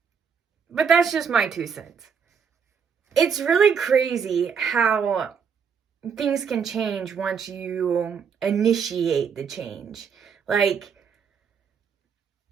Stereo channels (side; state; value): left; quieter; 6.5 dB